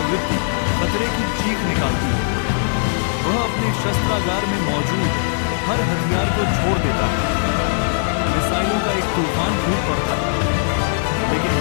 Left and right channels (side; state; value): right; silent; 66 dB below the other